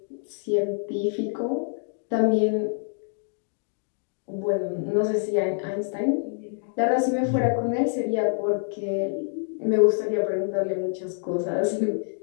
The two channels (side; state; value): right; silent; digital silence